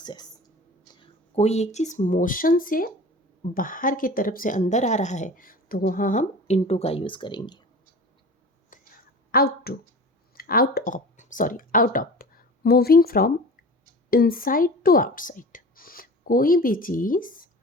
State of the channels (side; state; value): both; normal; correlation 0.37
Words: कोई एक चीज़ मोशन से बाहर की तरफ से अंदर आ रहा है तो वहाँ हम इनटू का यूज़ करेंगे। Out of, moving from inside to outside. कोई भी चीज़